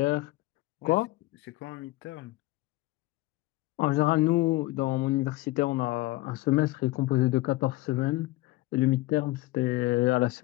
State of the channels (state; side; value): quieter; right; 19.1 dB